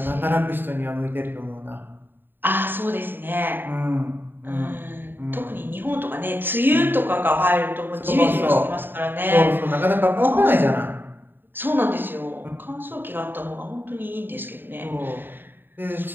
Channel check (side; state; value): left; late; 0.095 ms